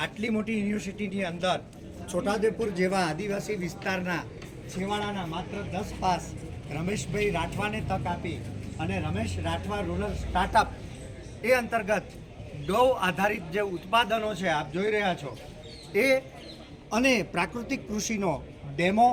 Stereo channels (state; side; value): identical; both; correlation 1.00